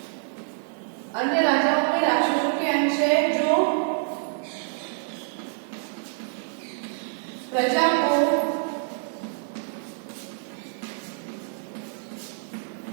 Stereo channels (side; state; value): left; silent; 58 dB below the other